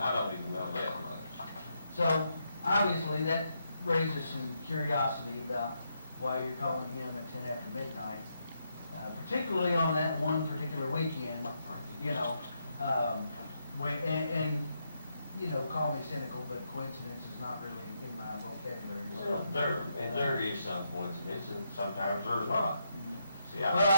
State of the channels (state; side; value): inverted; both; correlation -0.80